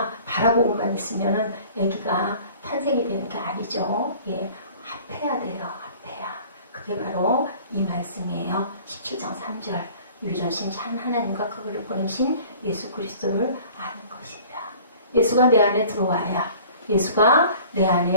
바라보고만 있으면은 아기가 탄생이 되는 게 아니죠. 예, 합해야 돼요. 합해야. 그게 바로 이 말씀이에요. 17장 3절. 유일하신 참 하나님과 그를 보내신 예수 그리스도를 아는 것입니다. 예수가 내 안에 들어와야 예수가 내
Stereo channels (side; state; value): both; inverted; correlation -0.48